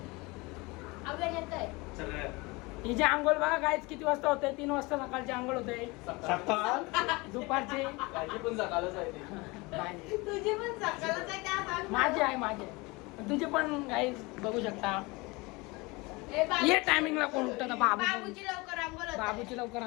हिचे आंघोळ बघा गायच किती वाजता होते. 3 वाजता सकाळची आंघोळ होते. दुपारची माझी आहे माझी. तुझे पण गाईज बघू शकता. ये टायमिंगला कोण उठतं. बाबूची लवकर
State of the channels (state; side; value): quieter; right; 24.8 dB